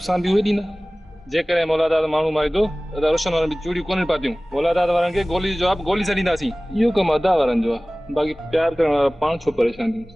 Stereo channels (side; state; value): both; normal; correlation 0.98